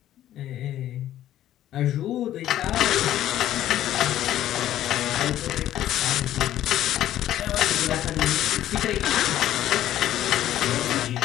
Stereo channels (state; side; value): quieter; right; 12.6 dB